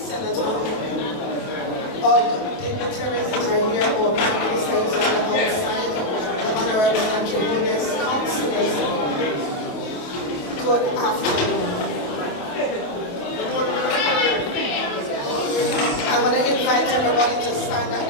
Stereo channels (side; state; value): right; late; 28 ms